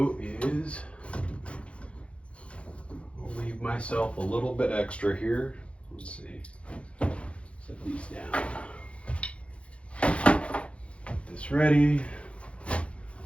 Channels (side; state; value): right; late; 0.061 ms